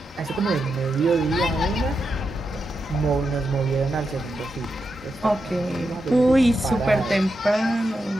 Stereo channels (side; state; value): both; normal; correlation 0.86